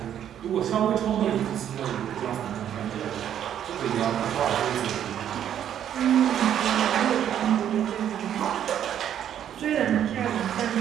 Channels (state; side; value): quieter; left; 10.0 dB